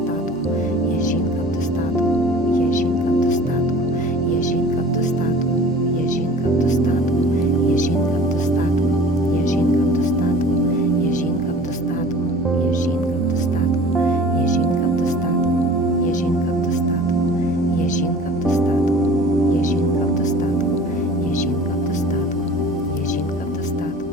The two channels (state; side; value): normal; both; correlation 0.44